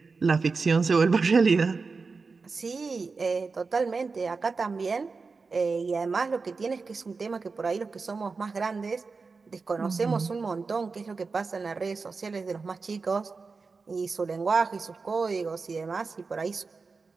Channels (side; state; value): left; quieter; 4.4 dB